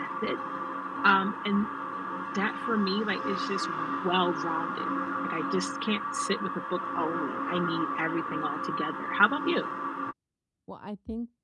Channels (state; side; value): identical; both; correlation 1.00